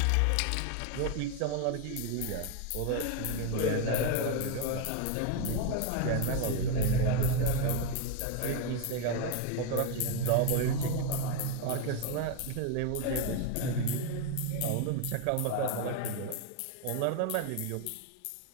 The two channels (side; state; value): both; different; correlation 0.01